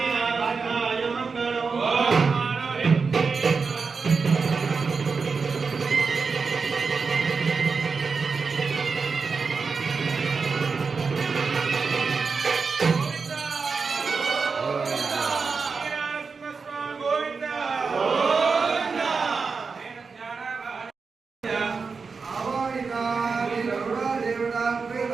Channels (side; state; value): left; quieter; 4.9 dB